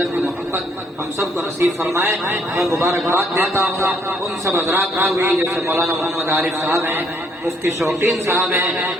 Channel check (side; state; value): both; normal; correlation 0.68